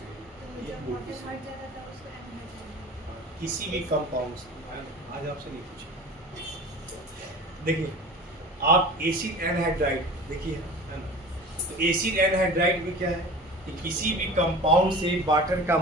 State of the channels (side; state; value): both; normal; correlation 0.38